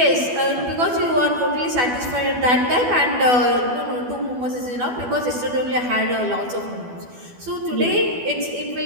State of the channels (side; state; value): left; late; 12 ms